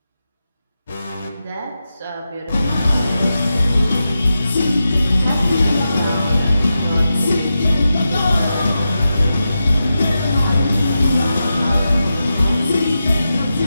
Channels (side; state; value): both; inverted; correlation -0.90